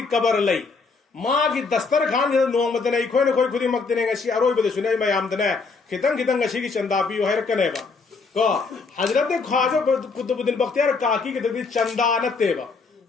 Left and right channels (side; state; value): right; quieter; 4.5 dB